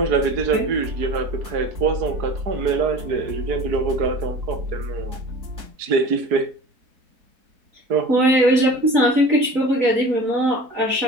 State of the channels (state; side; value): late; left; 3.9 ms